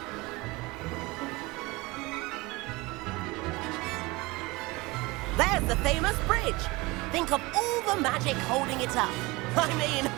There's the famous bridge. Think of all the magic holding it up. I mean,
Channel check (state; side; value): quieter; left; 23.1 dB